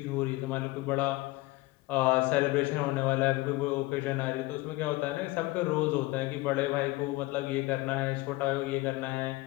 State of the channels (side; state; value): right; quieter; 20.4 dB